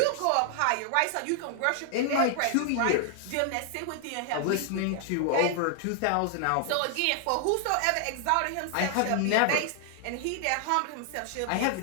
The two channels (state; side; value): different; both; correlation 0.00